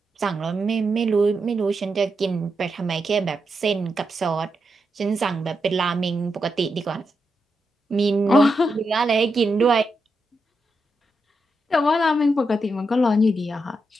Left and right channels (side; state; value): both; normal; correlation 0.85